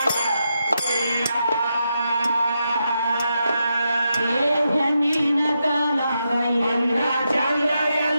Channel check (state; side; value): inverted; both; correlation -0.85